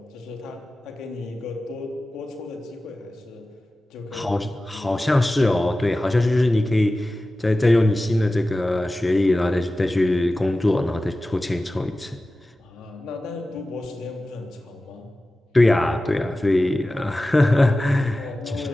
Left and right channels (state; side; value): normal; both; correlation 0.95